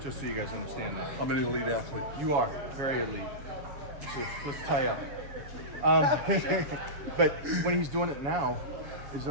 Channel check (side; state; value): left; late; 7.1 ms